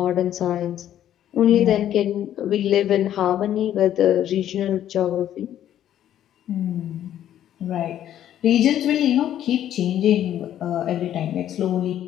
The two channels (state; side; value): quieter; right; 11.2 dB